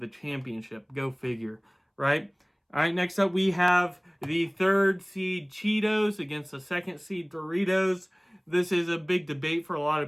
championship. Go figure, right? All right, next up we have the 3rd seed Cheetos against the 2nd seed Doritos. this is a big debate for a lot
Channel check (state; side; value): identical; both; correlation 1.00